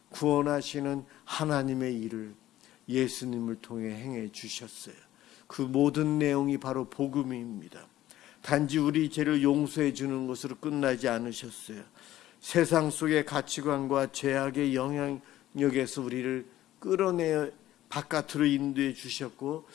구원하시는 하나님의 일을 예수님을 통해 행해 주셨어요. 그 모든 내용이 바로 복음입니다. 단지 우리 죄를 용서해 주는 것으로 끝나지 않으셨어요. 세상 속의 가치관과 죄악의 영향력에서 우리를 끌어내 바깥으로 인도해 주셨고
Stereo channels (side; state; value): right; quieter; 14.1 dB